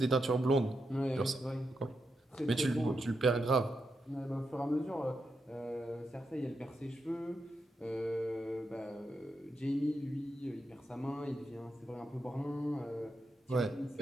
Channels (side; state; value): both; normal; correlation 0.85